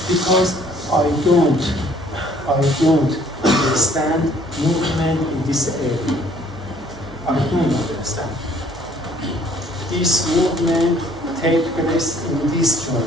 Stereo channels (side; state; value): right; noise; hum, 20 dB below the sound